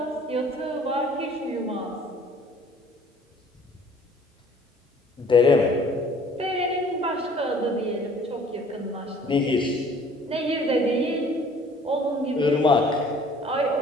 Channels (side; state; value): both; normal; correlation 0.54